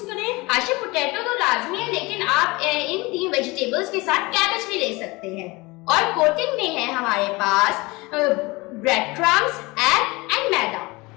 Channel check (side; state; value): right; quieter; 23.6 dB